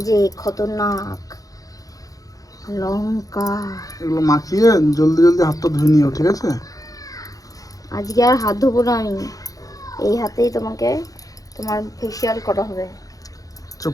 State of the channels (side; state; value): right; late; 0.17 ms